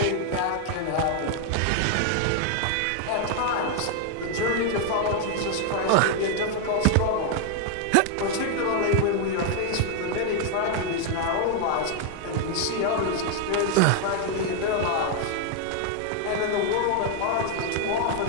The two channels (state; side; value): different; both; correlation 0.00